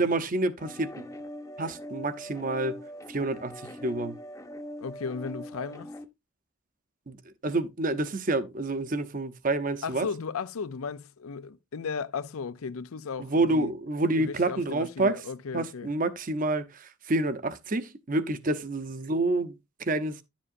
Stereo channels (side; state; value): both; normal; correlation 0.28